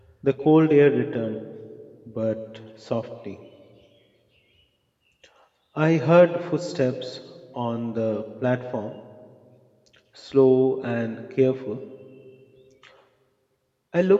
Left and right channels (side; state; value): both; identical; correlation 1.00